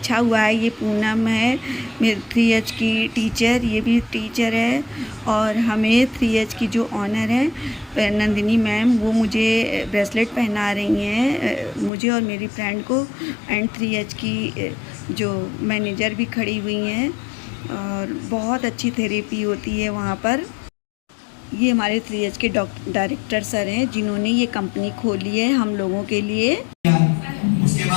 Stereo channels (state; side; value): drops out; right; at 11.9 s